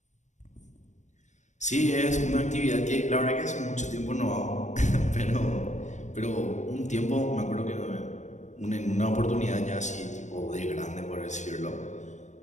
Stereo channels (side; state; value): right; late; 0.34 ms